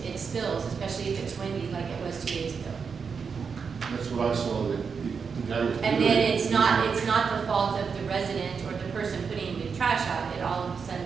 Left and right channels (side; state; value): left; quieter; 5.8 dB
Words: spills, especially if it's windy like it was 2 days ago. That's what I saw, the guy was doing. And then it's not the fault of the resident or the person putting the trash out. It all of a sudden